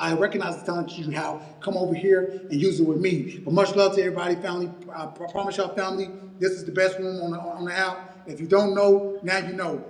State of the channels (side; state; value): both; identical; correlation 1.00